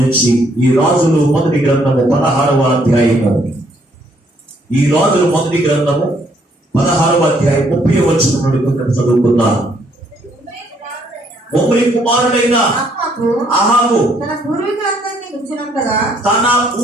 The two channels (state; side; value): normal; both; correlation 0.68